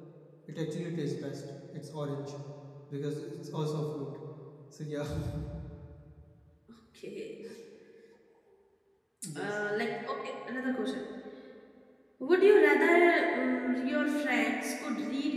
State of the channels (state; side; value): identical; both; correlation 1.00